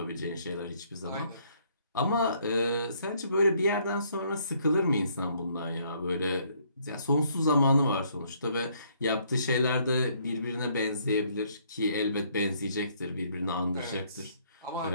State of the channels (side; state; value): both; inverted; correlation -0.66